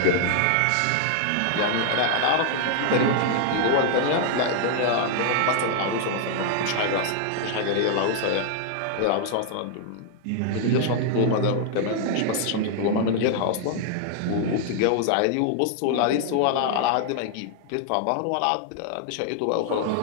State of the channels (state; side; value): different; both; correlation 0.00